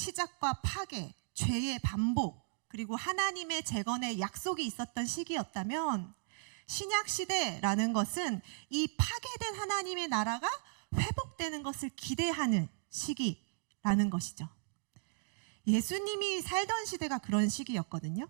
파괴, 죄의 반복, 그리고 하나님의 재건의 약속이 있었던 시기였다면 신약시대라는 것은 이 파괴된 하나님의 나라가 회복되는 것을 기대하는 시기라는 것이죠. 예수님이 살던 시대가 그런 시기였거든요.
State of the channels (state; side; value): silent; left; digital silence